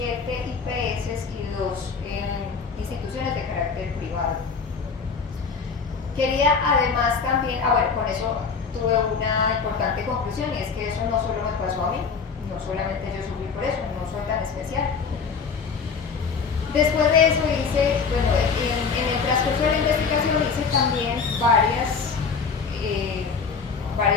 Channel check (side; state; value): right; quieter; 5.4 dB